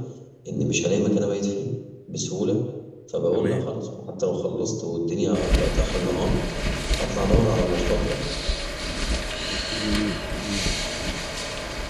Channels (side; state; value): both; identical; correlation 1.00